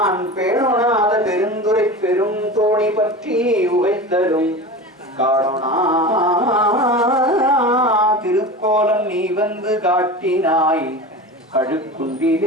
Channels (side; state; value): both; normal; correlation 0.30